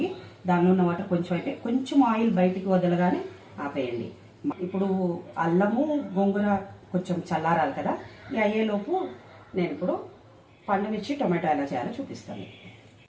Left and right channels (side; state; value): both; identical; correlation 1.00